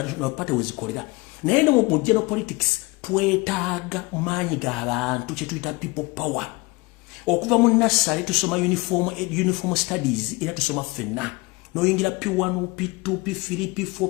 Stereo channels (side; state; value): right; quieter; 24.4 dB